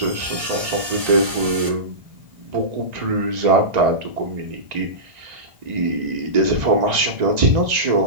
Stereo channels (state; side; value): late; left; 1.7 ms